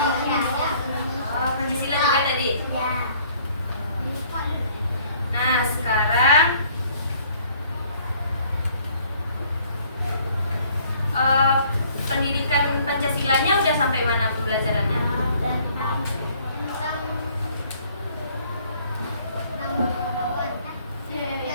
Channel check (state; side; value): inverted; both; correlation -0.60